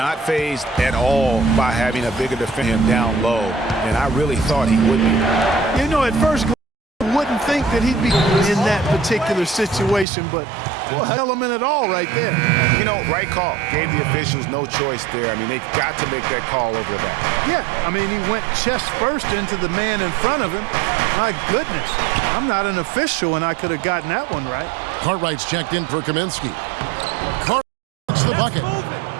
Not phased at all by having a bigger defender down low. And I really thought he would be. You know, at first, you wouldn't think that he'd be in that particular situation, but well, element at all right there. You know, right call. Gave the officials no choice there. I mean, they've got to make that call over the back. Yeah, I mean, he went chest first into the man in front of him. My goodness, I'm not an official, and I could have gotten that one right. Cartwright's checked in for Kaminsky. Cartwright gets the bucket.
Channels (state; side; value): drops out; left; at 10.1 s